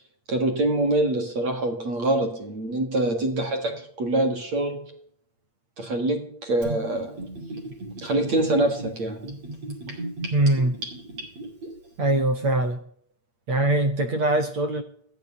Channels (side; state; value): left; late; 8.6 ms